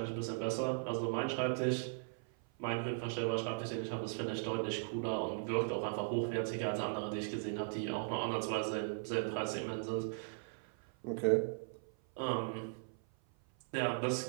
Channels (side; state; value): left; silent; 52 dB below the other